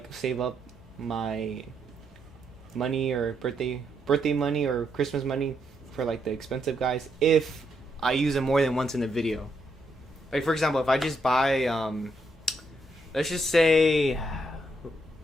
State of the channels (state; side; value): normal; both; correlation 0.77